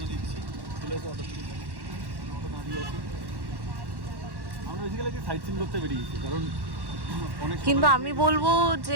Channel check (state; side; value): late; left; 1.1 ms